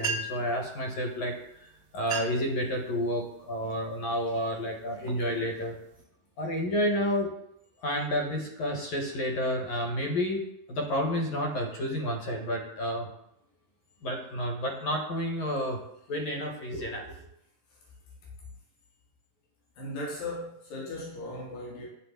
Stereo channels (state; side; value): late; right; 11 ms